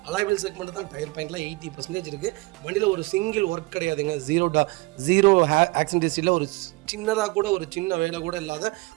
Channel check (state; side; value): quieter; left; 24.0 dB